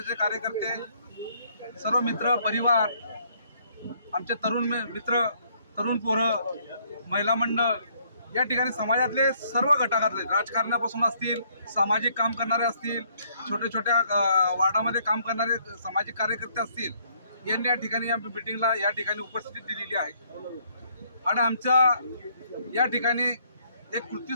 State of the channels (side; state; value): both; inverted; correlation -0.67